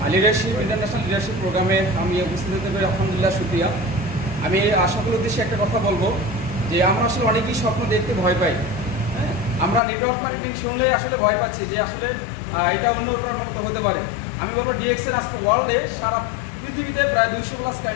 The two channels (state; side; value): drops out; right; at 9.8 s